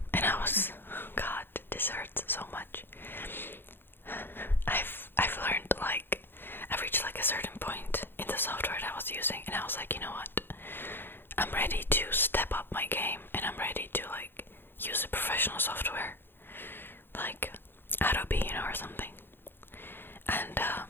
and God, this hurts so much. I've learned, like, I've reached like a certain point in the software that I was using, and I was like, you know what? I'm ready to step up my game, and I'm ready to like use a professional software, like Adobe, you know, or something. And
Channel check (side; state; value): right; late; 0.10 ms